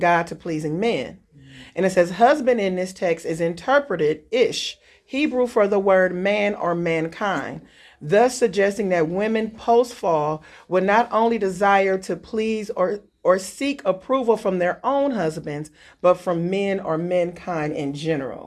to pleasing men. And it says husband in this text is interpreted ish, Hebrew for the word man or mankind, thus suggesting that women post-fall would not only desire to please or seek approval from their own husbands, but from men or mankind in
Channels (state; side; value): identical; both; correlation 1.00